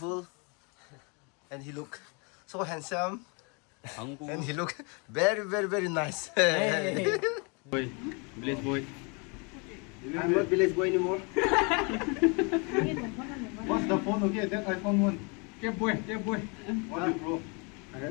and he look so handsome, and he look very, very, very nice. Boy, village boy. I'm not village boy anymore. What's the phone? Okay, that iPhone 1. Get boy. What is bro?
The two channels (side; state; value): right; quieter; 32.5 dB